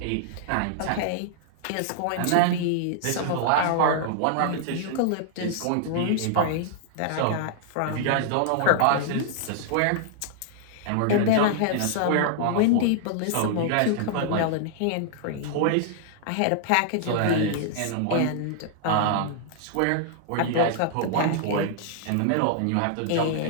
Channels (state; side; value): different; both; correlation -0.01